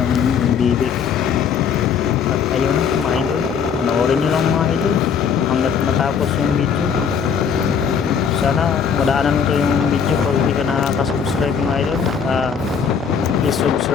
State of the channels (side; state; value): right; quieter; 6.9 dB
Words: bibig. At ayun na mga idol, panoorin nyo lang mga idol hanggat matapos yung video. Sana madaanan ko yung video kung hindi ka nakaka-subscribe mga idol. Please